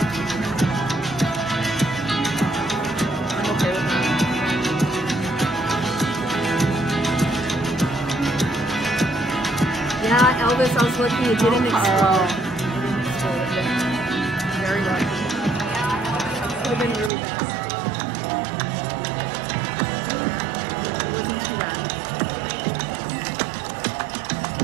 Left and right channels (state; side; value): drops out; left; at 17.1 s